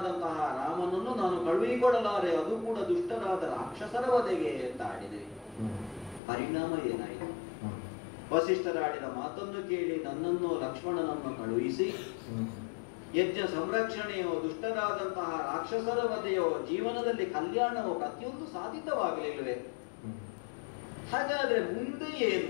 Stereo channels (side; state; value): right; drops out; at 6.2 s